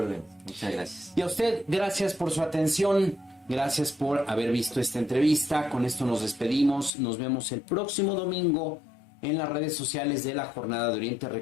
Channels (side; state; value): right; drops out; at 6.9 s